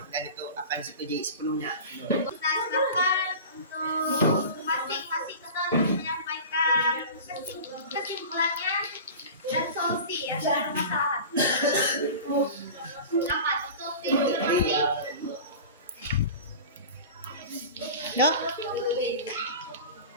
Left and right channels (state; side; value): inverted; both; correlation -0.34